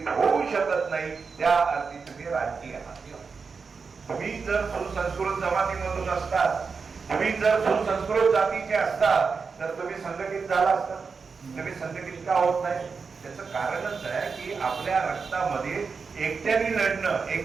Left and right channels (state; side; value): quieter; left; 5.1 dB